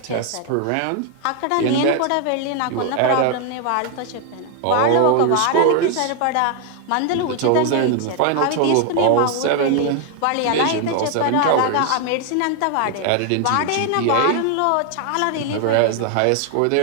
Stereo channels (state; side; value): different; both; correlation 0.00